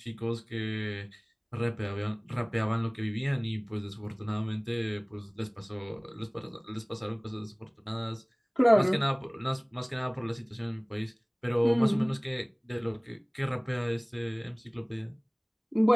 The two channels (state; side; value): identical; both; correlation 1.00